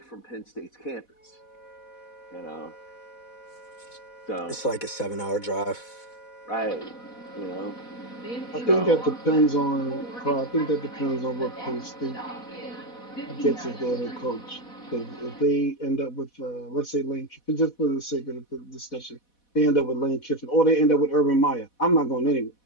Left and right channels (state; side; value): late; right; 4.1 ms